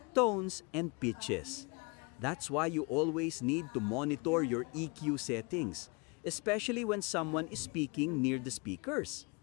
tones, and pitches. That's why you always need to monitor your EQ settings, especially when someone is speaking near the speakers.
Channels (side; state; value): right; quieter; 30.6 dB